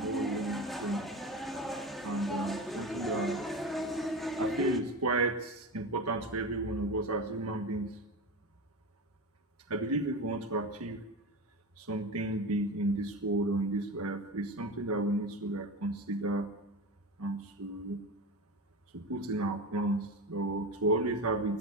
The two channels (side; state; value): both; normal; correlation 0.24